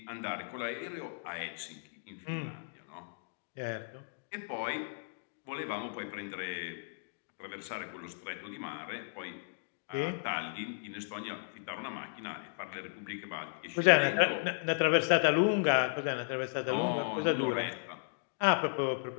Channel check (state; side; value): silent; right; digital silence